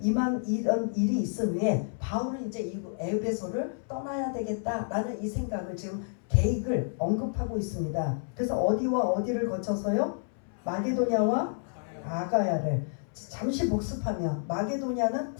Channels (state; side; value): silent; right; 58 dB below the other